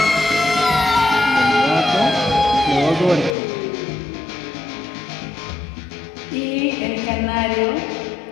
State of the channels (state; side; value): drops out; right; at 3.4 s